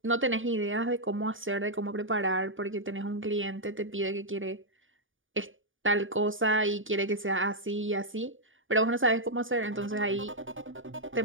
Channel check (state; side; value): late; left; 0.57 ms